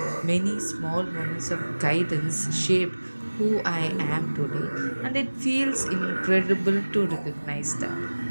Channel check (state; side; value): inverted; both; correlation -1.00